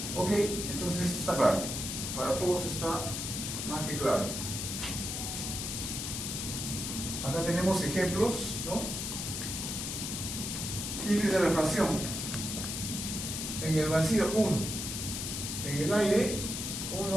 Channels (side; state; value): left; noise; hiss, 4 dB below the sound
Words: Ok, entonces esto está claro. Para todos está más que claro. Acá tenemos ejemplos, ¿no? Índice de refracción. En el vacío 1. En el aire